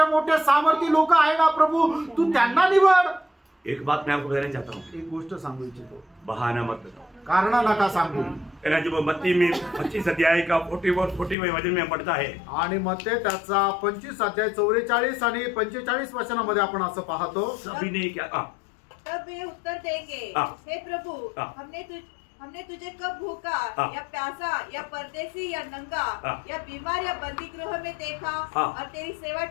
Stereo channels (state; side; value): drops out; right; at 11.4 s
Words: मोठे सामर्थी लोक आहे ना प्रभू, तू त्यांना निवड। एक बात मैं आपको बताना चाहता हूँ, एक गोष्ट सांगू इच्छितो, बहाना मत बताओ, कारण नका सांगू. जब मत्ती में 25 अध्याय का 44 वचन में पढ़ता है, आणि मत्ते त्याचा 25 अध्याय 44 आणि 45 वचनामध्ये आपण असं पाहतो. सभी ने क्या तब वे उत्तर देंगे, हे प्रभु, हमने तुझे कब भूखा या प्यासा या परदेसी या नंगा या बीमार या बंदी गृह में देखा और तेरी सेवा